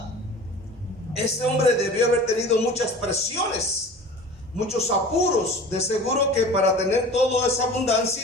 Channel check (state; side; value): normal; both; correlation 0.39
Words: este hombre debió haber tenido muchas presiones, muchos apuros. De seguro que para tener toda esa